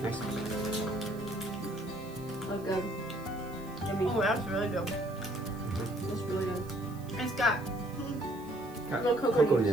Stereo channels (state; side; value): noise; right; hiss, 23 dB below the sound